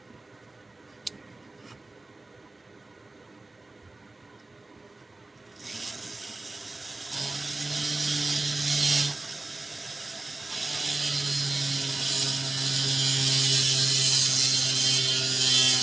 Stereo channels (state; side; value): quieter; left; 3.1 dB